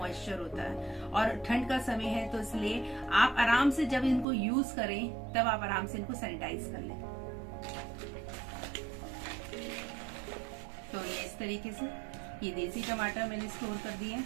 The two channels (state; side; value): drops out; left; at 4.2 s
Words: होता है और ठंड का समय है। तो इसलिए आप आराम से जब इनको यूज करें तब आप आराम से इनको सैनिटाइज कर लें। तो ये इस तरीके से ये देसी टमाटर मैंने स्टोर कर दिए।